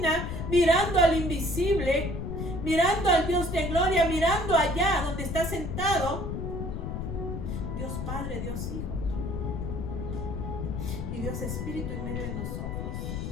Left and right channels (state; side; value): noise; left; rumble, 4 dB below the sound